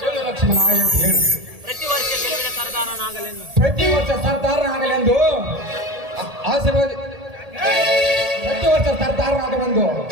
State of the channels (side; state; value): left; late; 1.8 ms